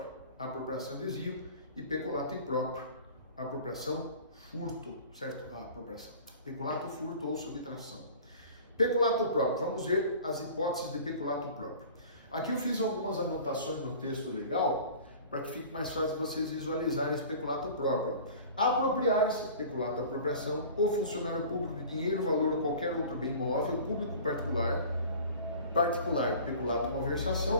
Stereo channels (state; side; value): inverted; both; correlation -0.43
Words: apropriação e desvio, e peculato impróprio, apropriação, furto, certo? Apropriação. Peculato, furto ou subtração. Peculato próprio, vamos ver as hipóteses de peculato próprio. Aqui eu fiz algumas anotações no texto legal, para que fique mais fácil vocês visualizarem esse peculato próprio. Apropriar-se, peculato apropriação, o funcionário público de dinheiro, valor ou qualquer outro bem móvel, público particular, peculato